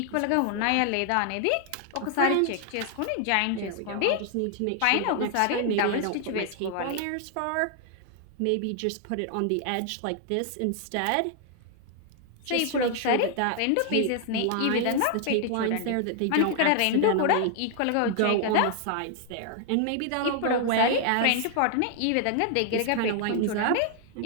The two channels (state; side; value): different; both; correlation 0.00